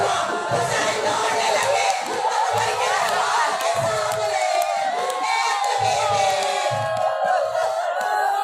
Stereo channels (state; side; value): identical; both; correlation 1.00